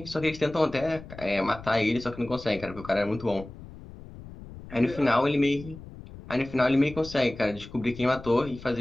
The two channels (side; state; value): left; noise; rumble, 16 dB below the sound